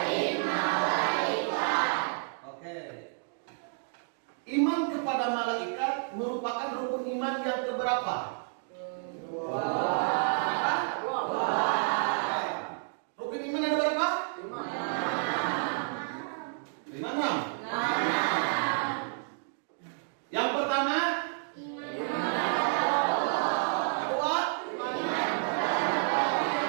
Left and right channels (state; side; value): silent; left; 58 dB below the other